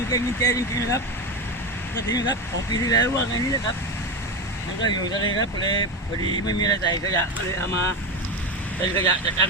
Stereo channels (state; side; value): normal; both; correlation 0.17